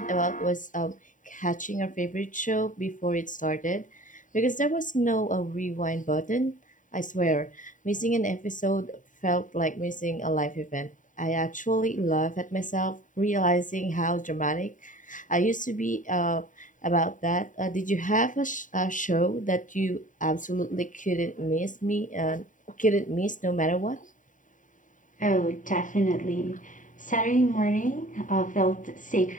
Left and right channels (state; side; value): late; right; 0.38 ms